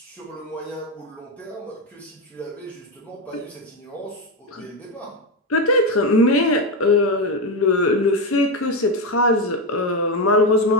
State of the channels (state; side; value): normal; both; correlation 0.12